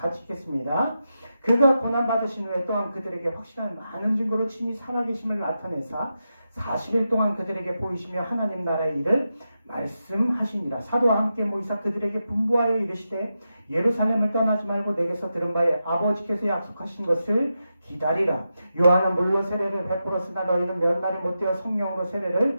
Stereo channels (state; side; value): inverted; both; correlation -0.88